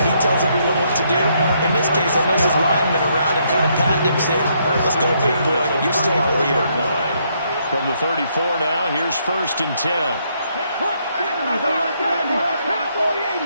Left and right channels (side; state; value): both; inverted; correlation -0.73